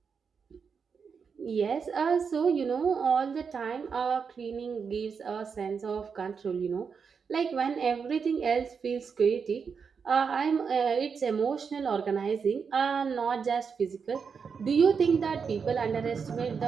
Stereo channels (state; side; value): quieter; left; 5.9 dB